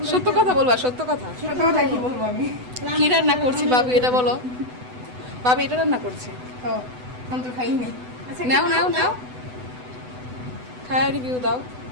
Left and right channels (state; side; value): late; left; 8.0 ms